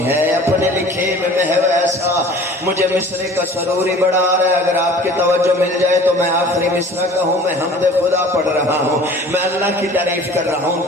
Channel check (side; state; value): both; normal; correlation 0.46